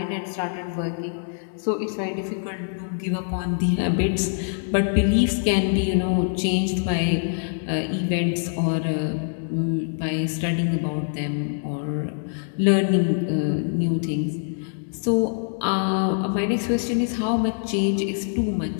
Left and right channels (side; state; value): right; silent; digital silence